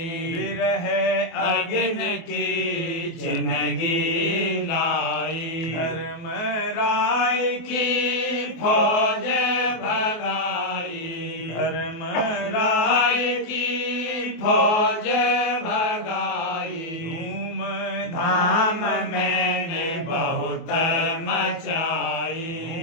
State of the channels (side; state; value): right; late; 24 ms